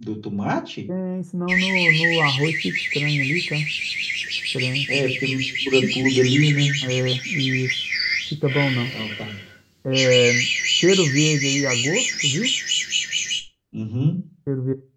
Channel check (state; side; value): identical; both; correlation 1.00